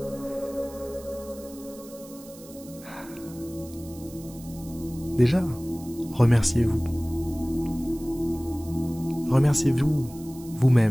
Déjà, remerciez-vous. Remerciez-vous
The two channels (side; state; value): right; noise; hiss, 20 dB below the sound